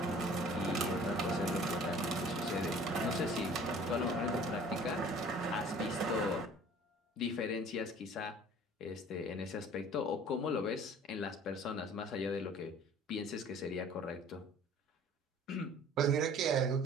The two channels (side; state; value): both; normal; correlation 0.49